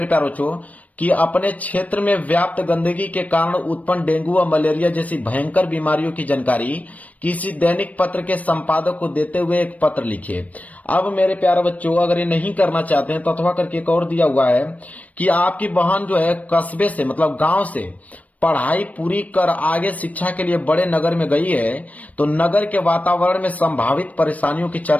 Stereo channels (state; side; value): late; right; 0.070 ms